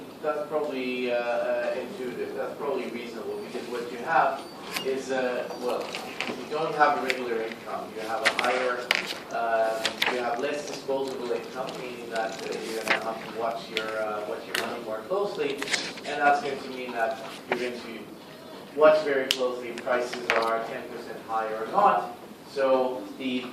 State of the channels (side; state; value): both; identical; correlation 1.00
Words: intuitive, that's probably reasonable, because what you have is, well, you don't have a regular income, you have a higher, you have less disposable income, meaning that you're going to have to watch your money more closely, and that's going to mean that you're going to watch very closely if prices are 10% higher or not. So the